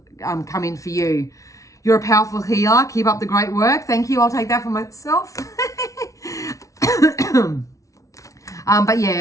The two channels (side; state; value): right; late; 0.16 ms